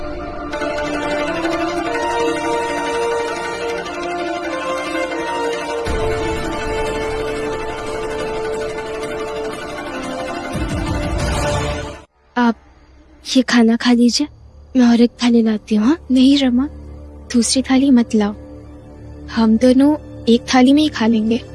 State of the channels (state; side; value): identical; both; correlation 1.00